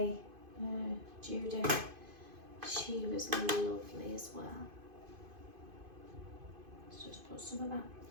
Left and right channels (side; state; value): left; late; 2.5 ms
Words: Judith. She was lovely as well. Let's just put some of that